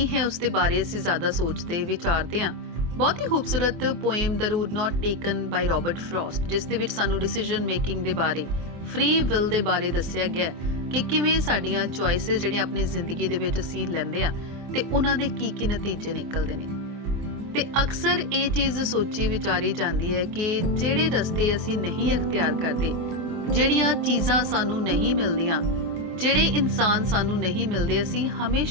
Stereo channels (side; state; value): left; late; 24 ms